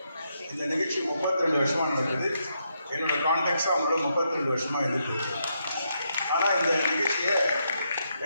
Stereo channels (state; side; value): inverted; both; correlation -0.80